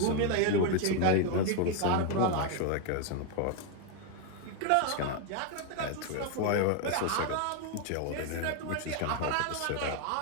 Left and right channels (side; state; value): both; different; correlation 0.01